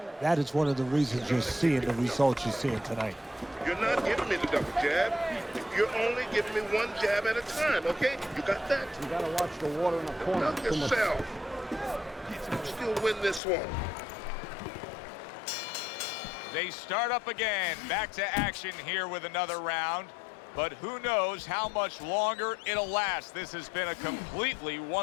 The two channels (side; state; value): right; drops out; at 13.4 s